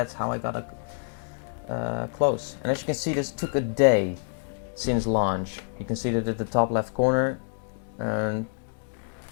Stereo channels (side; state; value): right; silent; 60 dB below the other